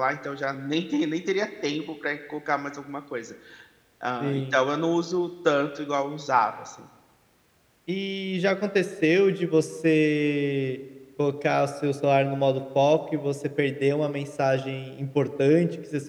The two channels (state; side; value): identical; both; correlation 1.00